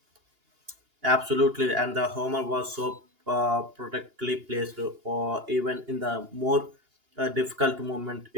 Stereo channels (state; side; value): late; left; 2.8 ms